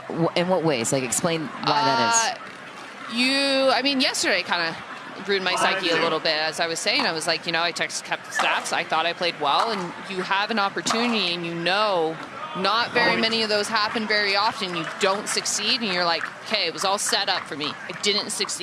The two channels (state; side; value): identical; both; correlation 1.00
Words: In what ways? Like, explain why that is. I mean, yesterday kind of ruined my psyche a little bit. As I was saying, I was like, I kept the stats. I thought I played well, and you have an opportunity, and not very many of those happen very often. You don't succeed, and you're like, okay, it was all set up for me. I didn't